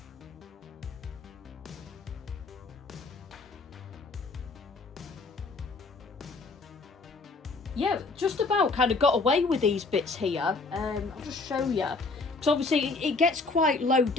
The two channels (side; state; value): right; quieter; 3.7 dB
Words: Yeah, just about kind of got away with these bits here. I'll just show you, because obviously it gets quite low